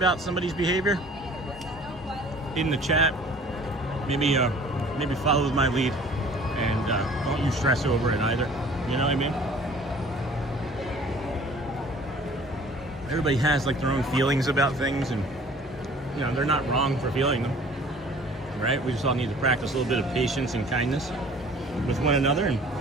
somebody's behavior in the chat, maybe follow my lead. And don't you stress over it either. You know what I mean? Everybody has like their own feelings about things, and you know they're not wrong for feeling them, right? We just all need to practice a little bit of patience and kindness with one another, and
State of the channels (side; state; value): both; normal; correlation 0.50